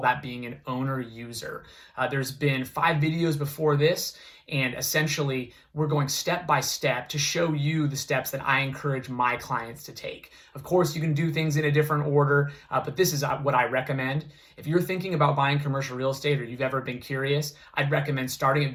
being an owner user. There's been 5 videos before this, and essentially we're going step by step to show you the steps that I encourage my clients to take. Of course, you can do things in a different order, but this is what I recommend. If you're thinking about buying commercial real estate or you've ever been curious, I'd recommend starting at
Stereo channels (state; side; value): identical; both; correlation 1.00